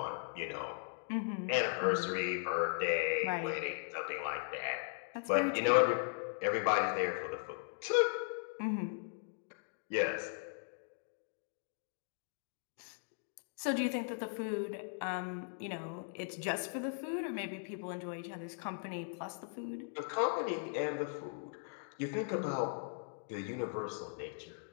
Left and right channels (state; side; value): silent; right; digital silence